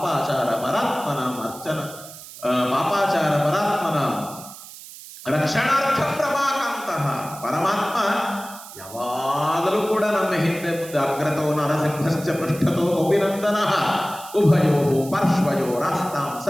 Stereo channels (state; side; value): noise; right; hiss, 16 dB below the sound